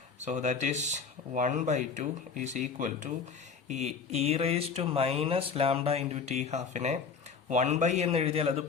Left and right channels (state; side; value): quieter; right; 5.7 dB